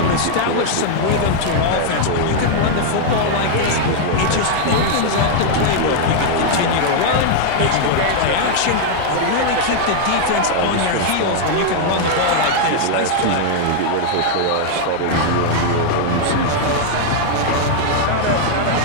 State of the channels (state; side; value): different; both; correlation 0.00